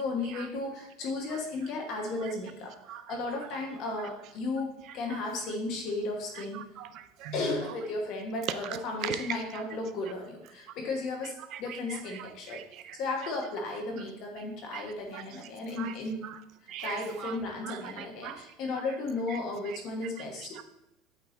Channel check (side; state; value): both; normal; correlation 0.45